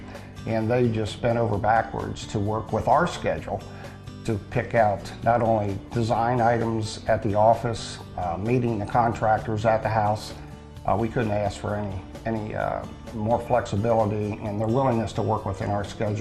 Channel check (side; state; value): both; identical; correlation 1.00